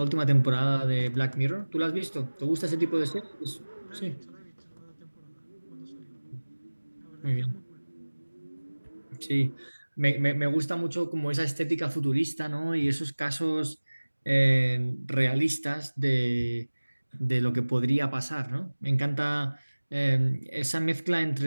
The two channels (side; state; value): both; inverted; correlation -1.00